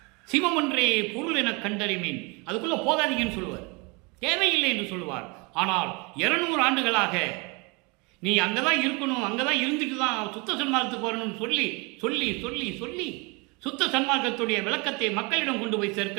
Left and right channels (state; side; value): quieter; left; 28.8 dB